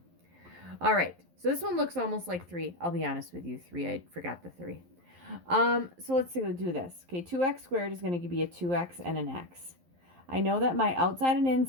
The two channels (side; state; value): left; late; 11 ms